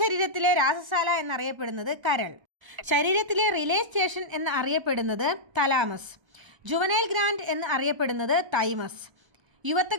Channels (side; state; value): left; late; 1.0 ms